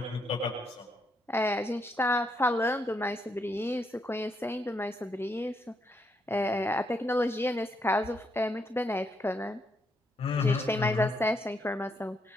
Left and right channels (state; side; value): normal; both; correlation 0.77